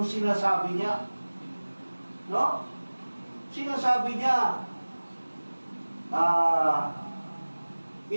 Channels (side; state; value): both; inverted; correlation -1.00